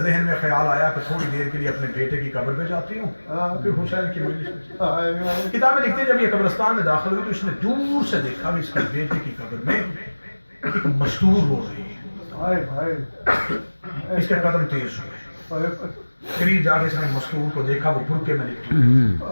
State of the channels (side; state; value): both; inverted; correlation -1.00